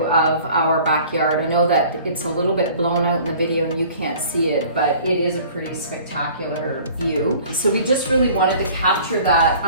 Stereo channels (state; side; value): inverted; both; correlation -0.49